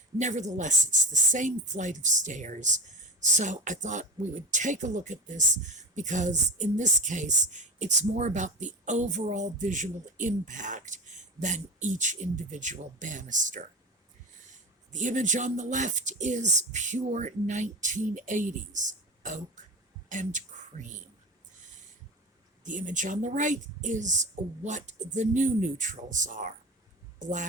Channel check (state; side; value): normal; both; correlation 0.30